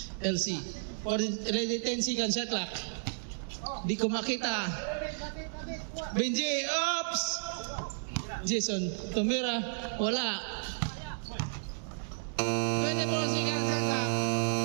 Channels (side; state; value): left; silent; 56 dB below the other